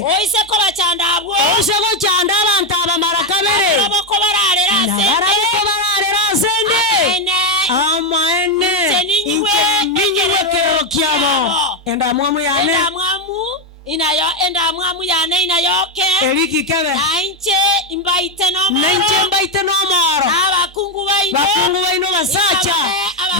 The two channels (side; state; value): both; normal; correlation 0.06